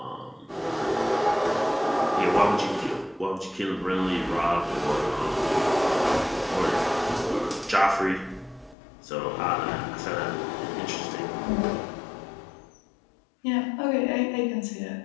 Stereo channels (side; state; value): right; drops out; at 8.8 s